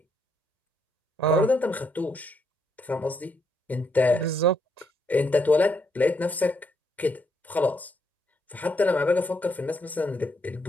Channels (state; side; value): normal; both; correlation 0.75